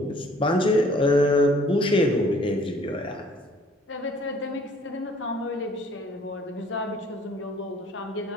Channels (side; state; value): both; normal; correlation 0.57